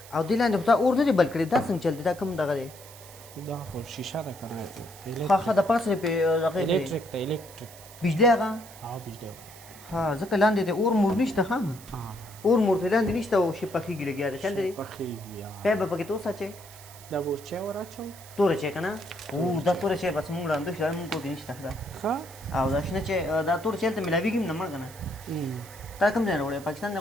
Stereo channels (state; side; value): noise; right; hiss, 19 dB below the sound